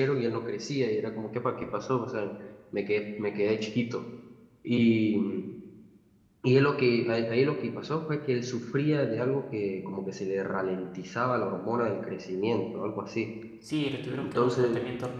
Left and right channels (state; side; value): identical; both; correlation 1.00